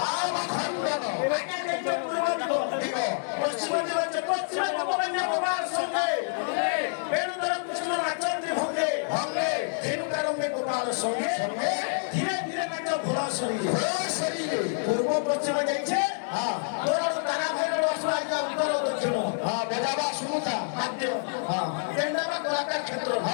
আগে দেখতে পূর্ব দিগ পশ্চিম দিগ হচ্ছে পশ্চিম গোপন্য গোপাল সঙ্গে বেণুধর কৃষ্ণ নাচন্দ্রী ভঙ্গে ধেনুকারঙ্গে গোপাল সঙ্গে ধীরে ধীরে নাচ ঘোড়া শরীরে পূর্ব পশ্চিম যাইছে তোর তারা ভাইর আসবা উত্তর দক্ষিণ বজাবা শুনুতা বাদ্য কেন্দ্রবা কলাকার ক্ষেত্র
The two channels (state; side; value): silent; right; digital silence